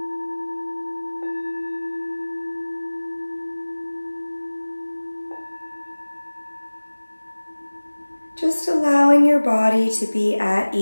Just allowing your body to be at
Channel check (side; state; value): both; inverted; correlation -1.00